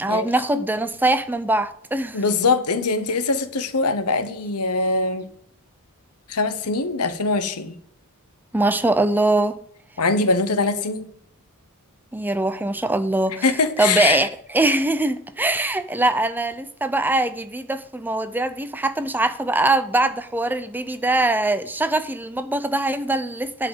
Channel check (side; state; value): both; normal; correlation 0.37